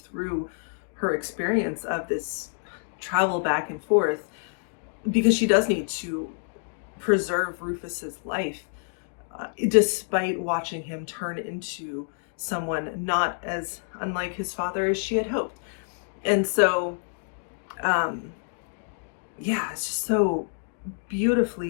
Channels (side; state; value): right; silent; digital silence